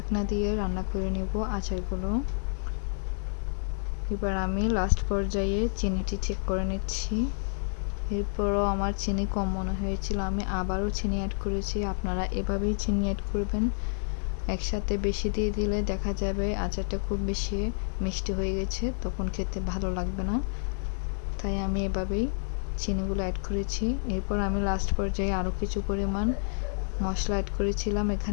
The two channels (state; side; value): silent; right; digital silence